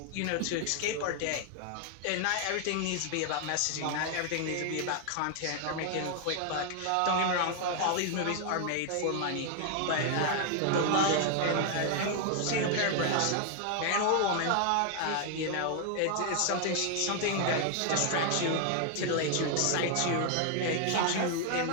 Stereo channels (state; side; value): different; both; correlation 0.00